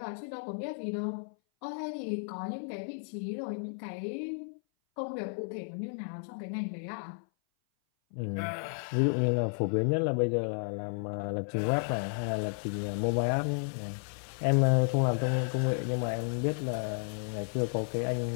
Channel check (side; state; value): right; silent; 56 dB below the other